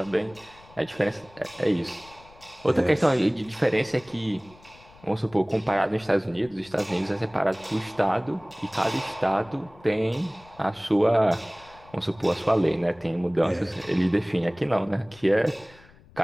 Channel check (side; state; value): left; noise; rumble, 25 dB below the sound